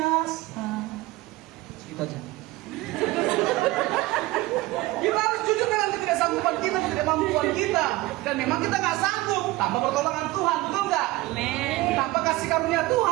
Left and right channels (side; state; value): left; quieter; 19.2 dB